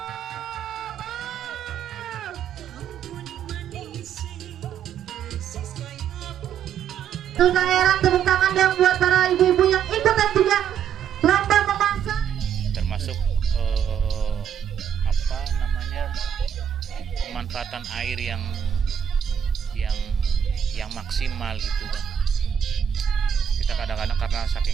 Daerah, tepuk tangan yang buat para ibu-ibu yang ikut dan juga lomba memasak. Termasuk pemanfaatan air yang maksimal gitu kan. Kita kadang-kadang karena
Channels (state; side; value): quieter; left; 8.7 dB